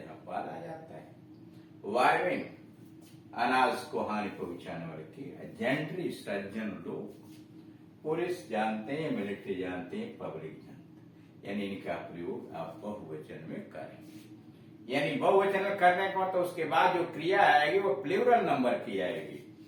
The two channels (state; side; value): identical; both; correlation 1.00